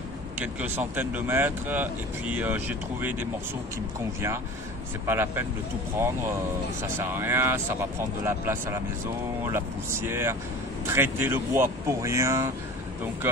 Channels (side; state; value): both; normal; correlation 0.39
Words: quelques centaines de mètres et puis j'ai trouvé des morceaux qui me conviennent. C'est pas la peine de tout prendre, ça sert à rien, ça va prendre de la place à la maison, la poussière, traiter le bois pour rien. Donc